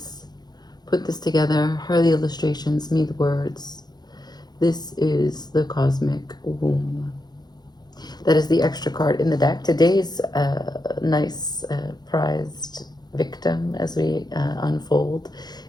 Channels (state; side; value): late; right; 0.20 ms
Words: put this together, her the illustrations, me the words. This is the Cosmic Womb. That is the extra card in the deck. Today's nice prized victim as we unfold